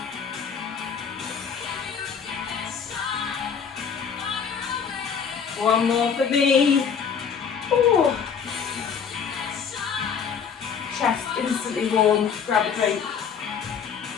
One more for me. Ooh. Chest instantly warm. Grab a drink.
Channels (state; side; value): quieter; right; 6.8 dB